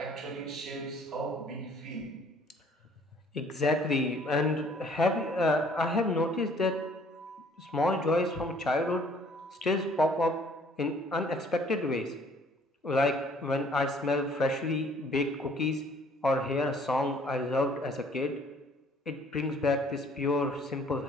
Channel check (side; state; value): both; normal; correlation 0.58